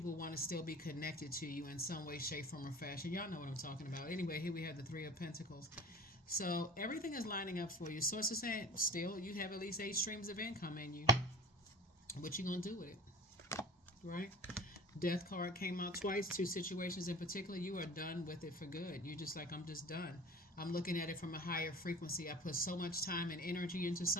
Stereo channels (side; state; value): both; normal; correlation 0.38